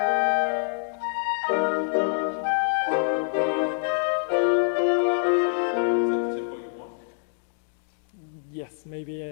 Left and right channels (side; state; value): right; silent; digital silence